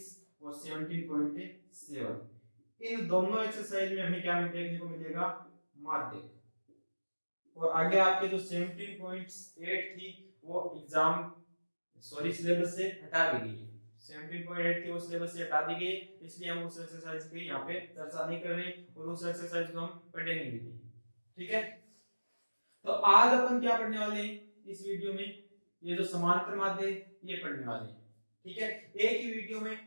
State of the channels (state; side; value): inverted; both; correlation -1.00